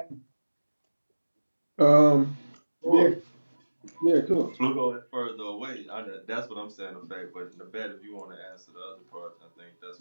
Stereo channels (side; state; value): both; inverted; correlation -1.00